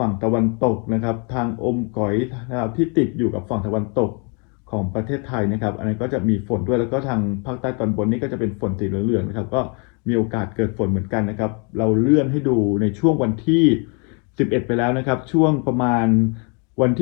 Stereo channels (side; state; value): right; quieter; 35.6 dB